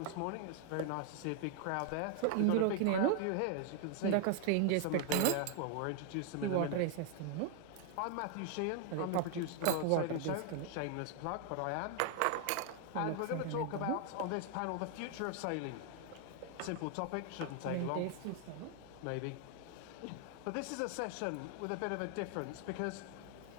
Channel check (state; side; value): different; both; correlation 0.00